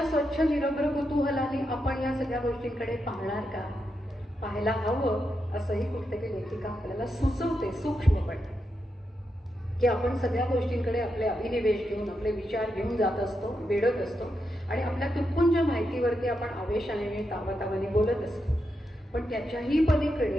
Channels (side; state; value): both; normal; correlation 0.85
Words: स्वच्छ निरभ्र कुतूहलाने आपण या सगळ्या गोष्टींकडे पाहणार का, पाहायला हवं असंही कुठेतरी लेखिका आपल्याला सुचवते सूक्ष्मपणे. की आपण सगळ्या गोष्टींकडे आपले अभिनिवेश घेऊन, आपले विचार घेऊन जात असतो, वेढत असतो आणि आपल्या तुटपुंज माहितीवरती आपण आवेशाने तावातावाने बोलत असतो. पण त्याच्याही